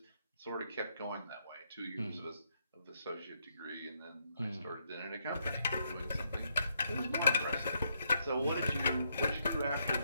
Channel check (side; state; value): both; inverted; correlation -0.76